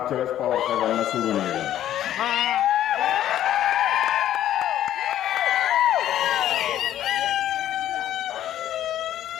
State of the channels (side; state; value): right; quieter; 11.9 dB